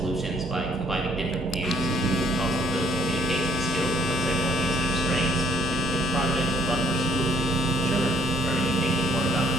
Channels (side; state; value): both; normal; correlation 0.64